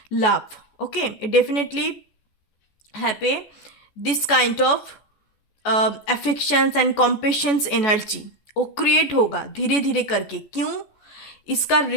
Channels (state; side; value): late; right; 14 ms